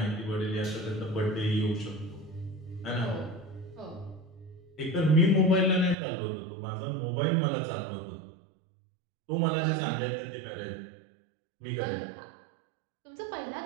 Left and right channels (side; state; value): left; drops out; at 6.0 s